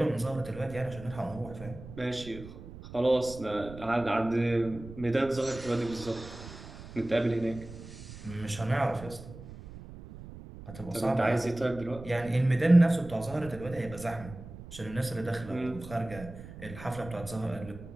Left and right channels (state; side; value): noise; right; rumble, 14 dB below the sound